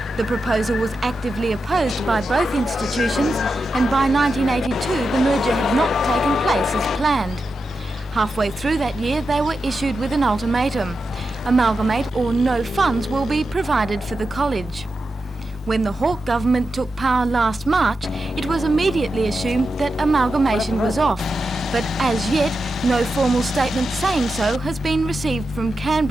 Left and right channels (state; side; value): normal; both; correlation 0.89